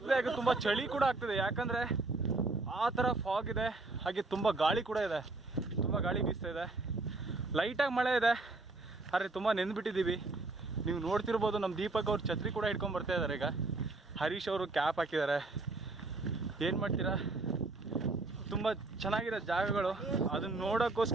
ಹಾಗೆ ತುಂಬ ಚಳಿ ಕೂಡ ಆಗ್ತಿದೆ, ಯಾಕಂದರೆ ಆ ಥರ ಫಾಗ್ ಇದೆ. ಹಾಗೆ ತುಂಬ ಗಾಳಿ ಕೂಡ ಇದೆ, ತುಂಬ ಗಾಳಿ ಬೀಸ್ತಾ ಇದೆ. ಲೈಟಾಗಿ ಮಳೆ ಇದೆ, ಆದರೆ ತುಂಬ ನೆಂದ್ಬಿಟ್ಟಿದ್ದೀವಿ. ನೀವು ನೋಡ್ತಿರ್ಬೋದು, ನಮ್ಮ ದೀಪಕ್ ಅವ್ರು ಛತ್ರಿ ಕೂಡ ಹಿಡ್ಕೊಂಡು ಬರ್ತಾ ಇದ್ದಾರೆ. ಈಗ ಹರೀಶ್ ಅವರು ಕ್ಯಾಪ್ ಹಾಕಿದ್ದಾರೆ. ಏನು ಮಾಡ್ತೀರಾ, ತುಂಬ ಚೆನ್ನಾಗಿದೆ ಜಾಗಗಳು. ಅದನ್ನು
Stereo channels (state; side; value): quieter; left; 3.2 dB